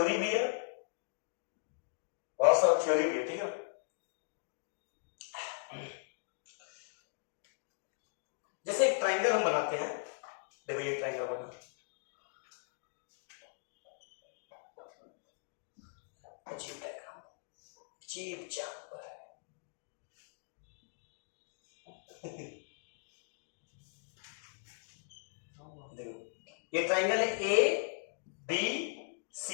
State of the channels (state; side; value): silent; right; digital silence